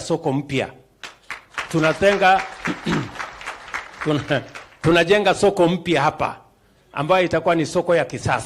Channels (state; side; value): identical; both; correlation 1.00